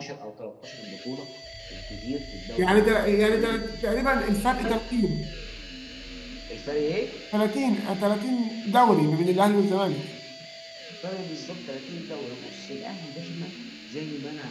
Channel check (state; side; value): identical; both; correlation 1.00